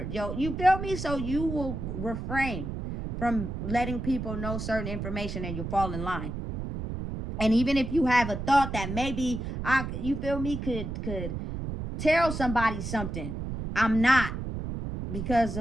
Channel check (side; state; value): right; noise; rumble, 5 dB below the sound